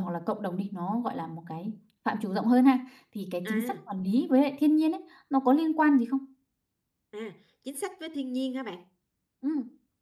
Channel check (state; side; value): identical; both; correlation 1.00